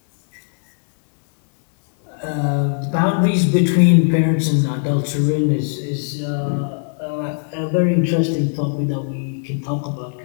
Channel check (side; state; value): right; silent; 66 dB below the other